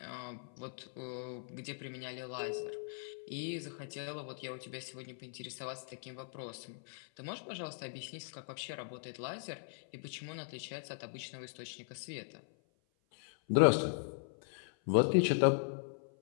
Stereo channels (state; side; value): silent; right; 52 dB below the other